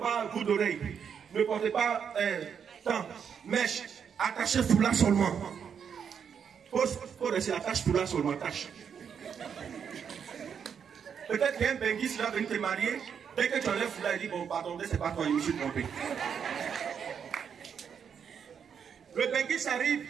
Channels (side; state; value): left; quieter; 7.3 dB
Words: bout d'oreille, ne portez pas mèche, attachez foulard seulement. Faut rester attache foulard seulement, attache. Peut-être qu'il y a un benguis qui va venir te marier. Dès que tu enlèves foulard, il dit, bon, pardon, c'est pas toi, je me suis trompé. Le benguis arrive.